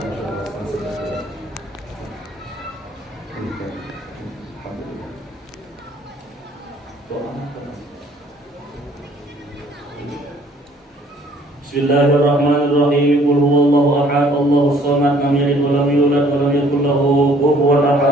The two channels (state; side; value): normal; both; correlation 0.59